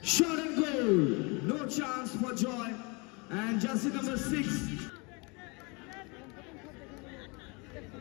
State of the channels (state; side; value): quieter; right; 29.7 dB